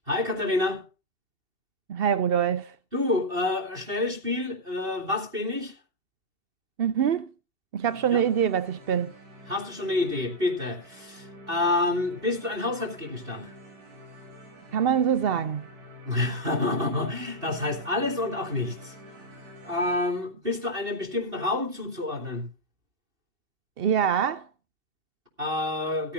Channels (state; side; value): late; left; 2.7 ms